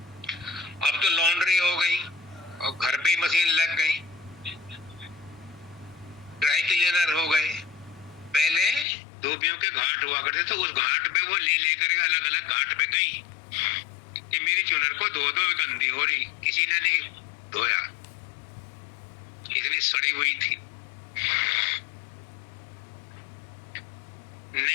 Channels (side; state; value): right; drops out; at 8.8 s